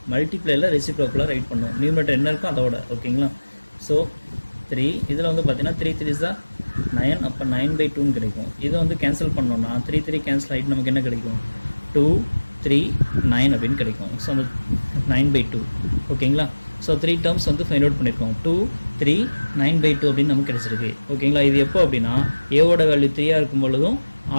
மல்டிப்ளைல ரெசிப்ரோக்கலில் ரைட் பண்ணணும். நியூமரேட்டர் என்ன இருக்கோ அதோட. ஓகேங்களா? ஸோ 3 இதில் வந்து பார்த்தீங்கன்னா 3 3 is 9, அப்போ 9/2 கிடைக்கும். இதை வந்து கேன்சல் பண்ணோன்னா 3 3 கேன்சல் ஆகிட்டு நமக்கு என்ன கிடைக்கும்? 2 3 9 அப்படின்னு கிடைக்கும். ஸோ அந்த 9/2. ஓகேங்களா? ஸோ 3 டேர்ம்ஸ் வந்து ஃபைண்ட் அவுட் பண்ணியிருக்கோம். 2 3 9/2 அப்படின்னு நமக்கு கிடைச்சிருக்கு. ஓகேங்களா? இது எப்போ அப்படின்னா ஏவோட வேல்யூ 3 இருக்கும் பொழுதும்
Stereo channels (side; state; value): both; inverted; correlation -1.00